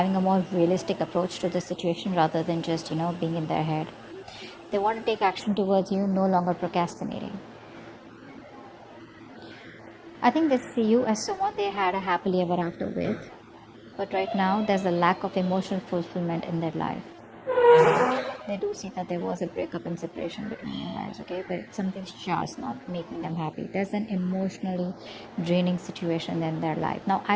a more realistic approach to the situation rather than just, being in their head. They want to take action towards you, no longer procrastinating. I think they see you as someone they had a happily ever after with. But right now, there's a lack of emotional fulfillment in their life. They do see that there was a breakup and separation between you guys, okay? But something's just not making them happy. There's an emotionally draining situation in their life. Now,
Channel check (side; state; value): both; identical; correlation 1.00